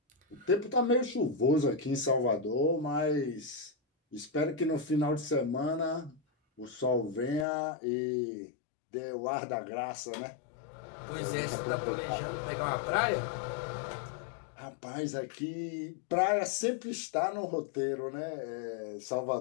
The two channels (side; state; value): right; drops out; at 7.5 s